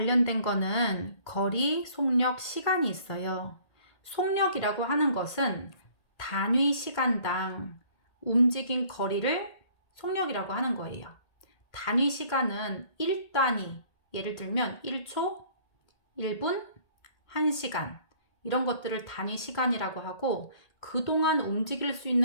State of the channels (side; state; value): right; late; 1.8 ms